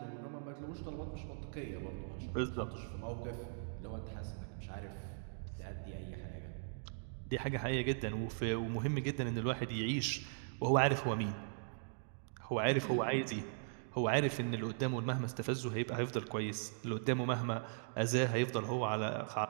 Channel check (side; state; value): left; silent; digital silence